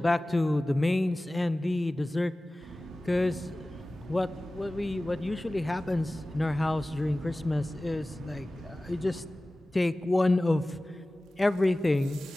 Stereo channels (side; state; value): both; normal; correlation 0.97